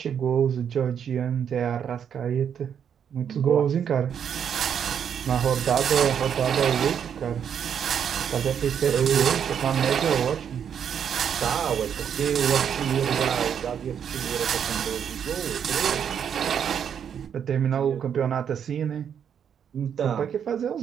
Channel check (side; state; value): left; quieter; 8.2 dB